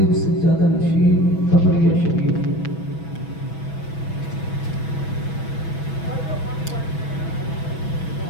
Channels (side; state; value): right; late; 6.1 ms